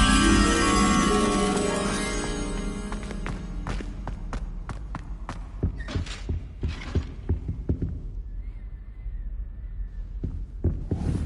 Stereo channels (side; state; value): both; identical; correlation 1.00